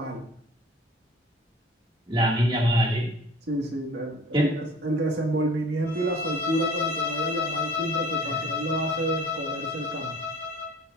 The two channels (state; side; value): normal; both; correlation 0.46